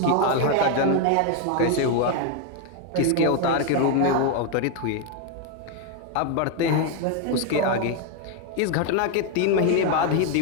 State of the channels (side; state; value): both; different; correlation 0.01